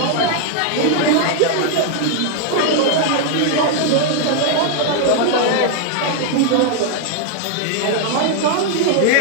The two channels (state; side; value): different; both; correlation 0.00